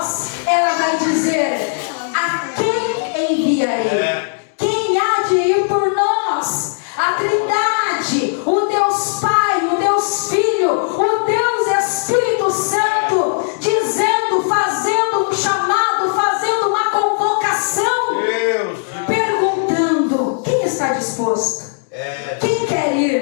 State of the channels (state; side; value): silent; right; digital silence